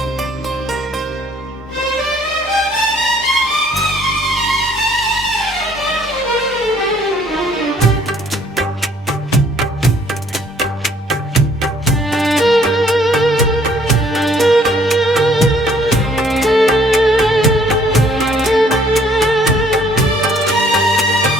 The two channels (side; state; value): both; normal; correlation 0.61